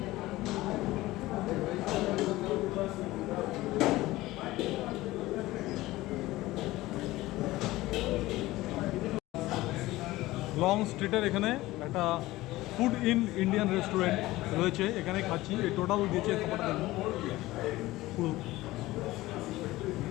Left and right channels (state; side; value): quieter; right; 18.0 dB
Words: লং স্ট্রিটের এখানে একটা ফুড ইন ইন্ডিয়ান রেস্টুরেন্ট রয়েছে, এখানে খাচ্ছি। এই টোটাল দিয়েছে খাবারটা দেখুন, পুরো